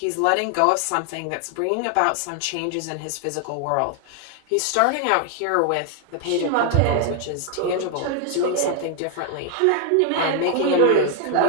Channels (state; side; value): different; both; correlation 0.00